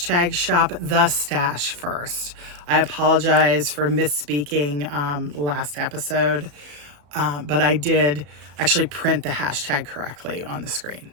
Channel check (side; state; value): left; late; 34 ms